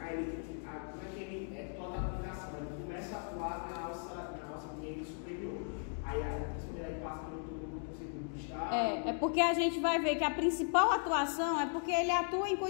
como é que ele é toda a aplicação? Ele começa a atuar na alça mineira superior. Aí ele passa pelo túbulo contorcido distal. É porque a gente vai ver que a principal atuação é porque ele atua em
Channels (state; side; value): silent; right; 53 dB below the other